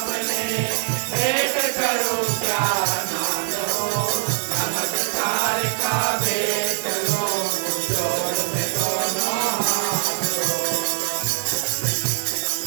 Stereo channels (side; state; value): left; silent; 64 dB below the other